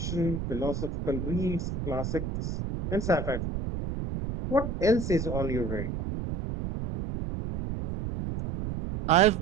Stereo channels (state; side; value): noise; right; rumble, 4 dB below the sound